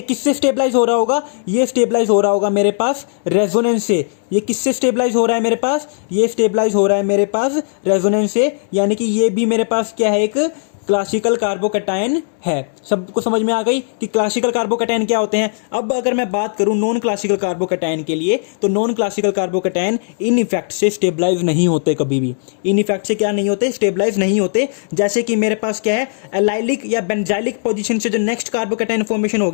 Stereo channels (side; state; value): right; silent; digital silence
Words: किससे स्टेबलाइज हो रहा होगा, ये स्टेबलाइज हो रहा होगा मेरे पास रेजोनेंस से। ये किससे स्टेबलाइज हो रहा है मेरे पास, ये स्टेबलाइज हो रहा है मेरे पास रेजोनेंस से, यानी कि ये भी मेरे पास क्या है, एक क्लासिकल कार्बोकैटायन है। सबको समझ में आ गई कि क्लासिकल कार्बोकैटायन क्या होते हैं। अब अगर मैं बात करूं नॉन क्लासिकल कार्बोकैटायन के लिए, तो non classical carbocation in effect से स्टेबलाइज नहीं होते, कभी भी इन इफेक्ट से क्या नहीं होते, स्टेबलाइज नहीं होते। जैसे कि मेरे पास क्या है, एलाइलिक या बेंजाइलिक पोजीशन से जो नेक्स्ट कार्बोकैटायन फॉर्मेशन हो